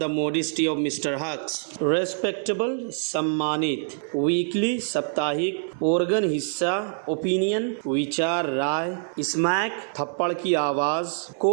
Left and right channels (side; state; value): left; silent; digital silence